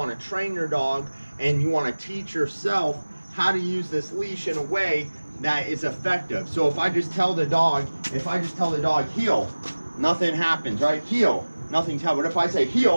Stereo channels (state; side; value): inverted; both; correlation -1.00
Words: to train your dog, and you want to teach yourself how to use this leash in a way that is effective. So if I just tell the dog heel, nothing happens, right? Heel, nothing's happening. But if I say